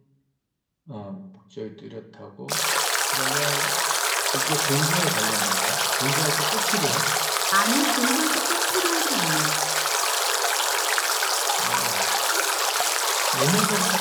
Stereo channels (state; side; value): identical; both; correlation 1.00